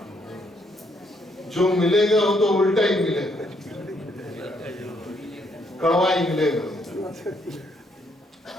जो मिलेगा वो तो उल्टा ही मिलेगा, कड़वा ही मिलेगा।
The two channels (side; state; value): both; normal; correlation 0.72